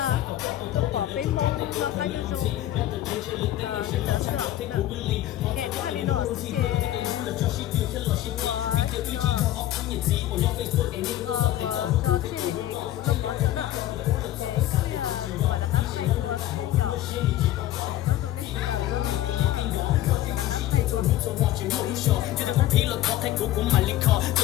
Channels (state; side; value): quieter; right; 13.7 dB